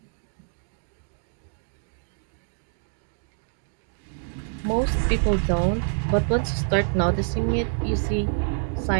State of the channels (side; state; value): left; silent; digital silence